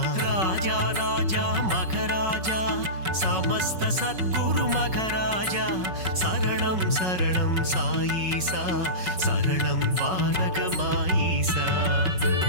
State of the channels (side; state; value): left; late; 5.4 ms